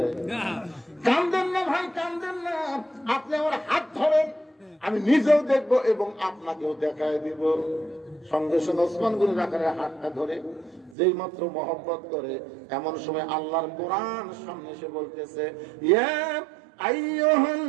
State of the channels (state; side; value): drops out; left; at 11.0 s